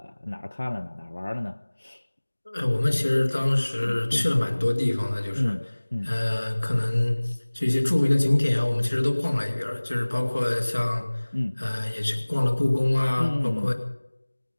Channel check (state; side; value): inverted; both; correlation -1.00